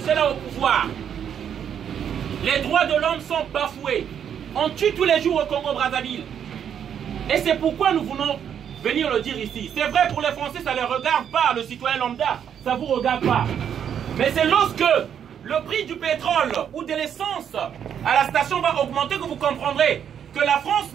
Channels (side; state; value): left; quieter; 8.6 dB